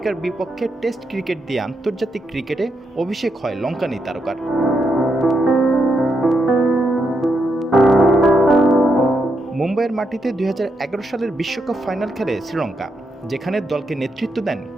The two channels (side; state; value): both; normal; correlation 0.81